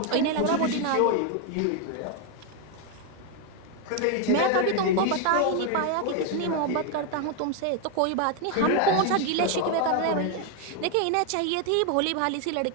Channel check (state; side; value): different; both; correlation 0.01